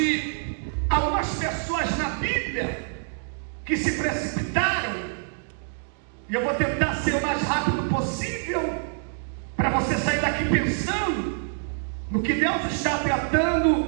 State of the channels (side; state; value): left; silent; 61 dB below the other